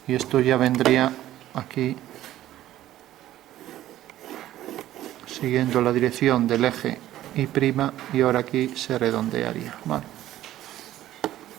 y esto ya vendría aquí siguiendo la dirección del eje Y', y ahora aquí se redondearía. Vale.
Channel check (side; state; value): left; quieter; 13.6 dB